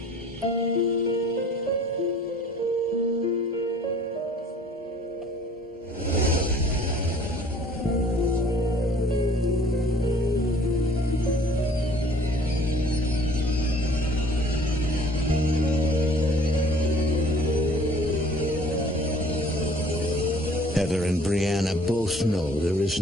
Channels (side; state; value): both; normal; correlation 0.53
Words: Heather and Brianna both know there is